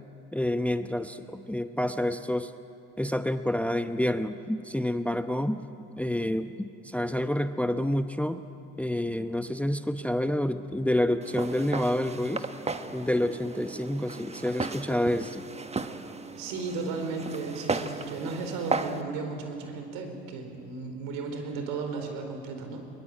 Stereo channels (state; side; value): normal; both; correlation 0.81